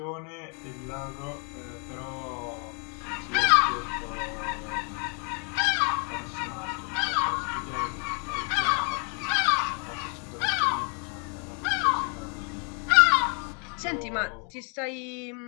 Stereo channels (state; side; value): quieter; right; 38.4 dB